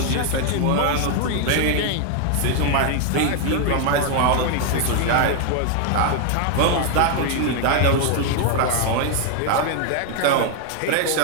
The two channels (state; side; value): different; both; correlation 0.00